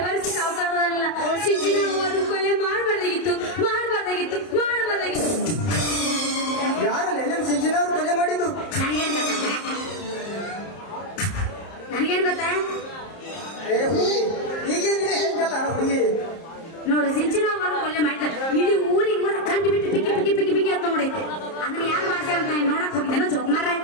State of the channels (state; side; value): late; right; 30 ms